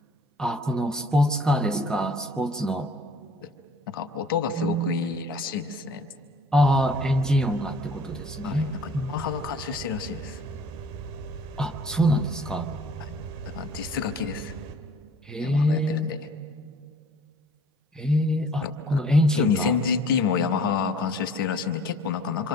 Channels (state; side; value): normal; both; correlation 0.51